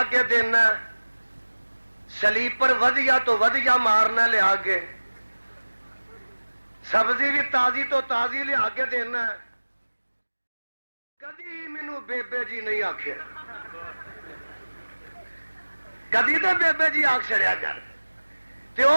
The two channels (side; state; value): both; inverted; correlation -1.00